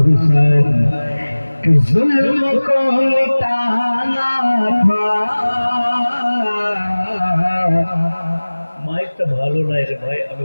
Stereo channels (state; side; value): inverted; both; correlation -1.00